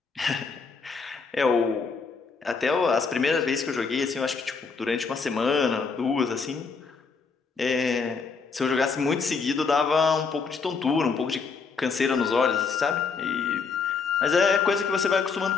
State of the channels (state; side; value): quieter; right; 5.1 dB